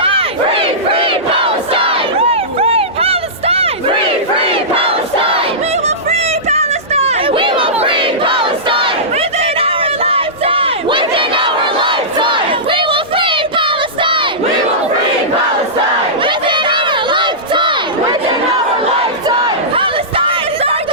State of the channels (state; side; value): normal; both; correlation -0.17